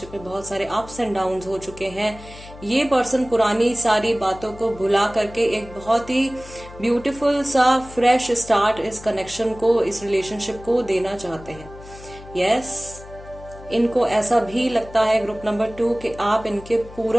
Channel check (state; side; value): noise; left; hum, 17 dB below the sound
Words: में बहुत सारे अप्स एंड डाउन्स हो चुके हैं, ये पर्सन पुरानी सारी बातों को भुला करके एक बहुत ही ब्यूटीफुल सा फ्रेश स्टार्ट इस कनेक्शन को, इस रिलेशनशिप को देना चाहते हैं। यस, इनको ऐसा भी लगता है ग्रुप नंबर 2 कि आप इनके